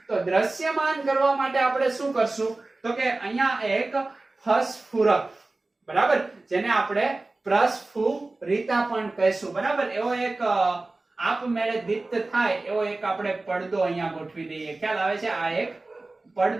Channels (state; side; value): quieter; left; 3.2 dB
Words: તો દ્રશ્યમાન કરવા માટે આપણે શું કરશું તો કે અહીંયા એક ફસ્ફુરક, બરાબર, જેને આપણે પ્રસ્ફુરિતા પણ કહીશું, બરાબર, એવો એક આપમેળે દીપ્ત થાય એવો એક આપણે પડદો અહીંયા ગોઠવી દઈએ. ખ્યાલ આવે છે? આ એક